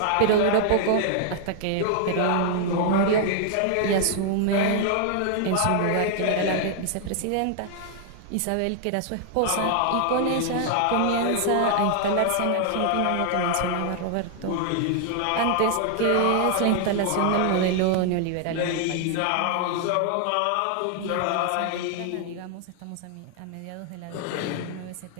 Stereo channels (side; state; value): both; different; correlation 0.00